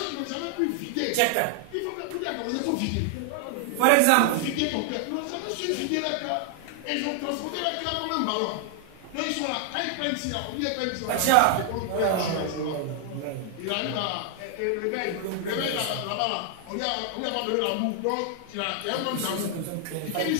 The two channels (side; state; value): both; different; correlation 0.00